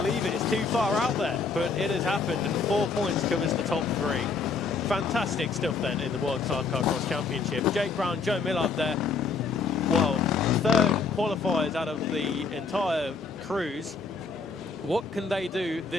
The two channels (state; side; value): quieter; right; 4.7 dB